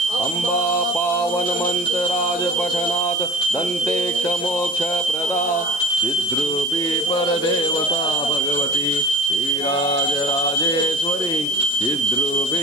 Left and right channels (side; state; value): left; noise; hiss, 16 dB below the sound